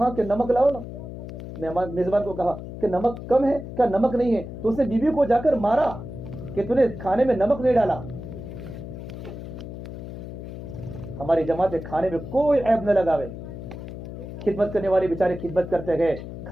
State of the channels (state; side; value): noise; left; hum, 10 dB below the sound